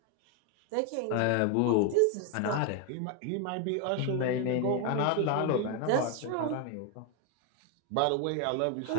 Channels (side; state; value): both; different; correlation 0.01